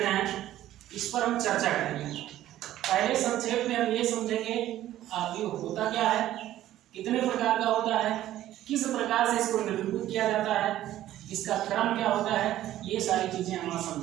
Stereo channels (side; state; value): left; quieter; 13.5 dB